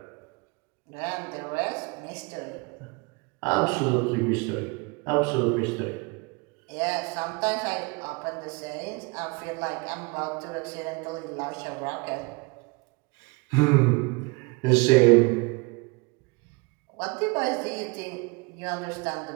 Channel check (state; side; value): quieter; left; 28.5 dB